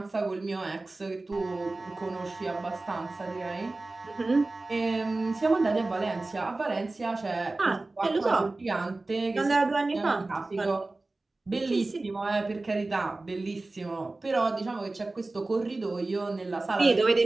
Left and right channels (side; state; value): left; quieter; 3.1 dB